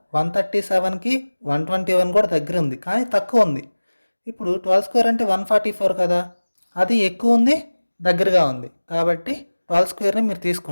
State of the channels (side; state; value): both; inverted; correlation -1.00